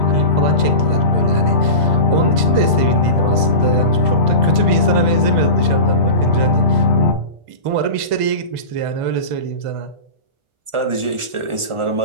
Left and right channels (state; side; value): late; left; 1.4 ms